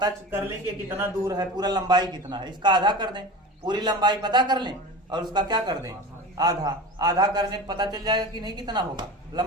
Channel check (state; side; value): normal; both; correlation 0.31